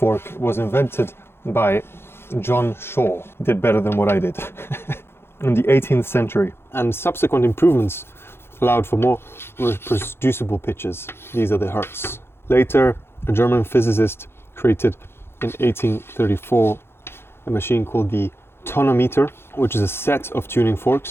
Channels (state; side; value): late; right; 0.11 ms